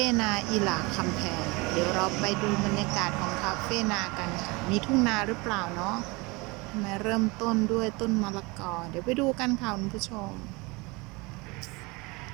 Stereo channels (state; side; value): quieter; left; 25.6 dB